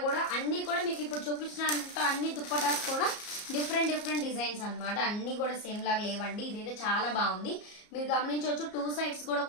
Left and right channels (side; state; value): right; late; 34 ms